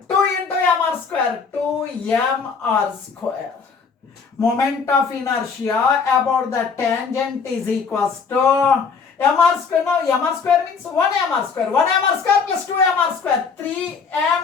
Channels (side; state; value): right; quieter; 5.5 dB